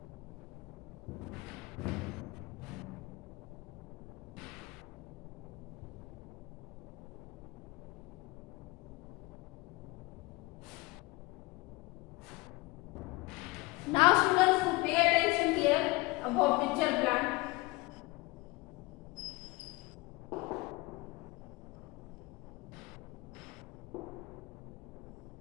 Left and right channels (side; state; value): right; quieter; 22.8 dB